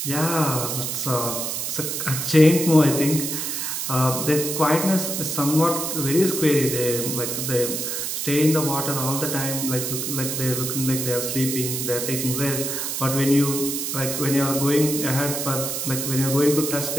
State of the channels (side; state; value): right; noise; hiss, 3 dB below the sound